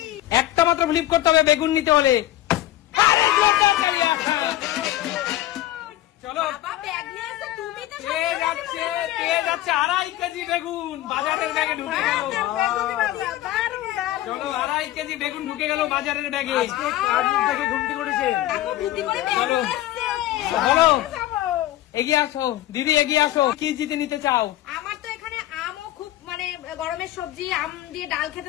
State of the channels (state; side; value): quieter; right; 14.7 dB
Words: একটা মাত্র ফ্লিপ করতে হবে বেগুন নিতে হলে। চলো, পেয়ে যাচ্ছে 2.5 কেজি বেগুন বাজারের ব্যাগে ঢুকে গেল। চলো, 2.5 কেজি বেগুন ঢুকে গেল বাজারের ব্যাগে। চলো বলো, এগিয়ে আসো দিদি, এগিয়ে আসো। কি জিতে নিতে চাও? আমার তো এখানে আমও খুব মানে গরমের সবজি, আম দিয়ে ডাল